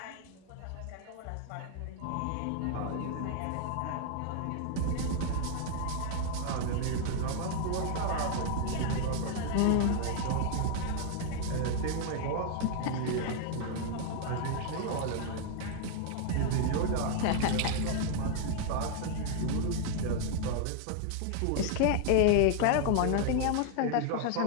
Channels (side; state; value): both; different; correlation 0.00